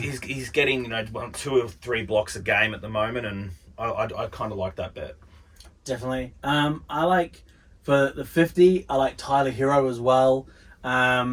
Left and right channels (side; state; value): both; identical; correlation 1.00